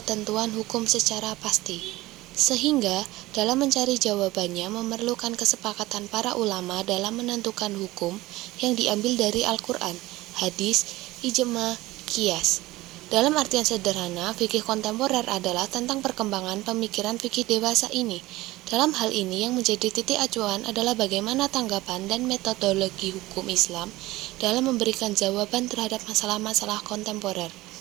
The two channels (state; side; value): quieter; left; 18.5 dB